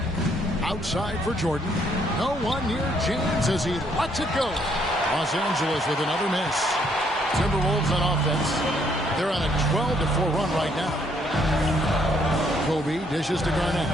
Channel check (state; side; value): normal; both; correlation 0.69